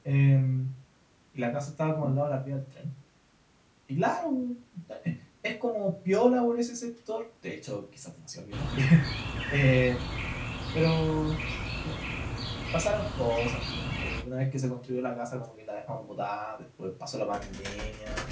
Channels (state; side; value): identical; both; correlation 1.00